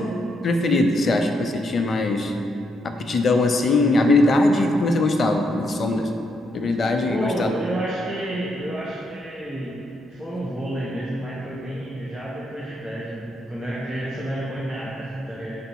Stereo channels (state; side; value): normal; both; correlation 0.78